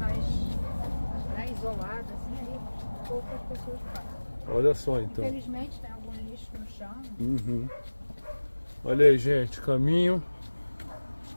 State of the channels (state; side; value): inverted; both; correlation -1.00